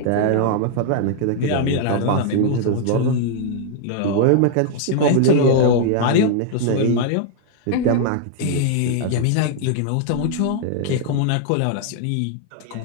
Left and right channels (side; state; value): both; different; correlation 0.00